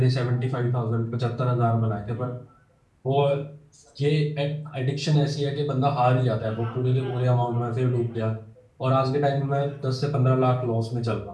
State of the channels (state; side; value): identical; both; correlation 1.00